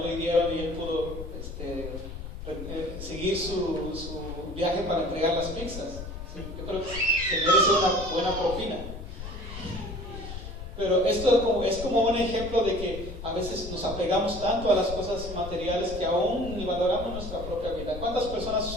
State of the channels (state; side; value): noise; left; rumble, 9 dB below the sound